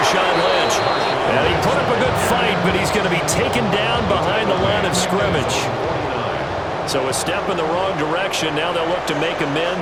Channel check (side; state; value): both; identical; correlation 1.00